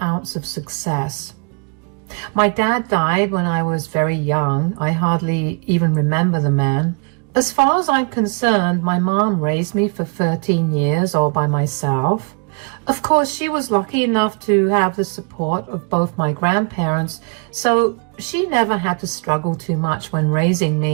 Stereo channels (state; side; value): quieter; left; 36.9 dB